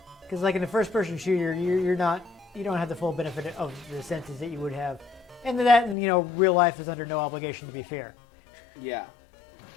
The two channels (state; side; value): drops out; right; at 6.0 s